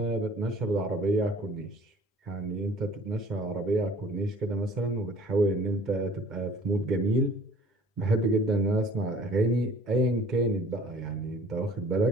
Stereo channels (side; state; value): both; normal; correlation 0.51